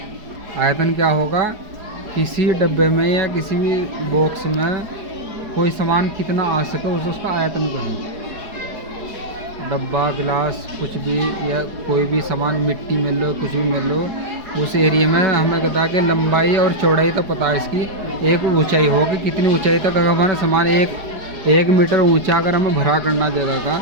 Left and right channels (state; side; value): late; left; 4.8 ms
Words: आयतन क्या होगा? किसी डब्बे में या किसी भी बॉक्स में कोई सामान कितना आ सके उसे उसका आयतन कहें। डब्बा, गिलास, कुछ भी या कोई भी सामान, मिट्टी मिल लो, कुछ भी मिल लो, उस एरिया में हमें कहता है कि लंबाई और चौड़ाई तो पता है इसकी, एक ऊंचाई होगी कितनी ऊंचाई तक अगर हमारा सामान एक मीटर ऊंचा अगर हमें भरा करना जगह का,